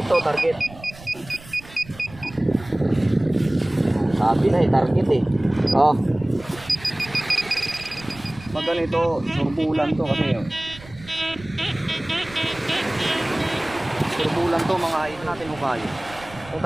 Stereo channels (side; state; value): right; noise; rumble, 19 dB below the sound